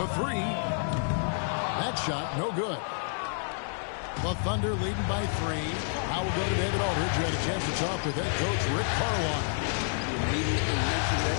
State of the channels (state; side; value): silent; right; digital silence